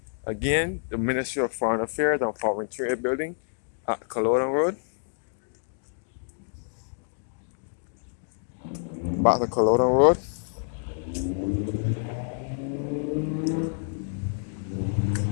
again the Ministry of Foreign Affairs and Foreign Trade building at Culloden Road. Back to Culloden Road.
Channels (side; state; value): right; silent; 60 dB below the other